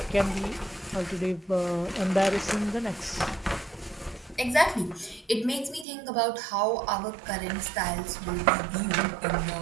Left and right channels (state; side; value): drops out; left; at 5.9 s